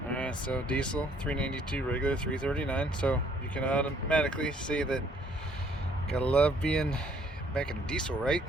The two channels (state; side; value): normal; both; correlation 0.63